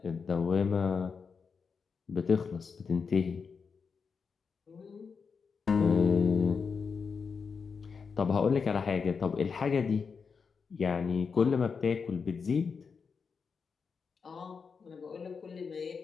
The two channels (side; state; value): right; quieter; 5.6 dB